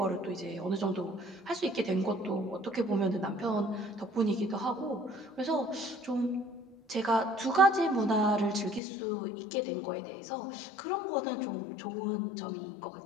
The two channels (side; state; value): right; drops out; at 8.8 s